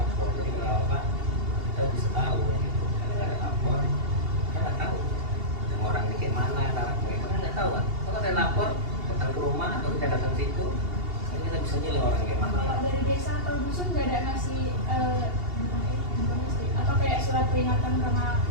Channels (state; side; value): late; left; 2.8 ms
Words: Jadi kalau apa kita bisa tahu gitu. Kalau nggak ada lapor, kita nggak tahu. Yang orang di kayak mana, cara kayak mana nggak tahu kan. Kalau ada lapor, datang ke rumah atau kita datang ke situ, kan kita bisa nilai orang kayak mana. Kalau dari desa atau dusun nggak ada ngasih gimana sih? Atau kayak surat peringatan karena